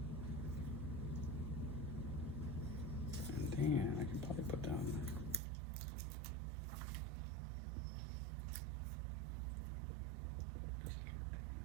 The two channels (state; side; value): drops out; left; at 5.4 s